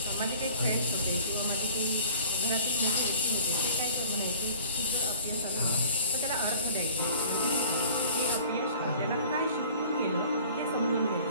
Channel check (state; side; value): inverted; both; correlation -0.46